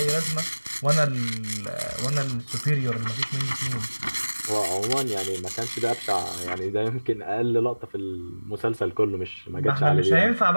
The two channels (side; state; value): both; inverted; correlation -1.00